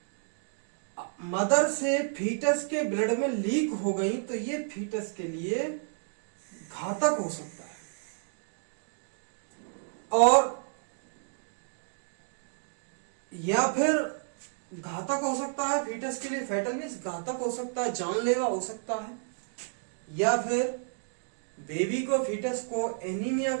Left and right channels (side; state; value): left; silent; digital silence